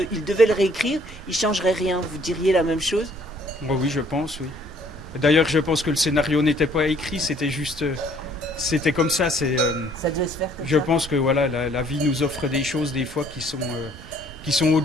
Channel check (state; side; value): normal; both; correlation 0.60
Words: il devait le réécrire, il changerait rien. Vous diriez la même chose? Oh oui, je pense, oui. D'ailleurs, je pense que le scénario n'était pas écrit, c'était juste... c'était comme ça. Ça devait se faire comme Je ça. pense que voilà, la vie nous offre des choses des fois qui sont